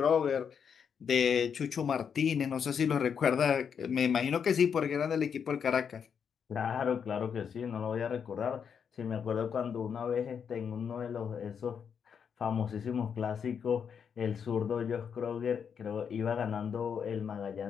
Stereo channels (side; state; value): right; quieter; 7.1 dB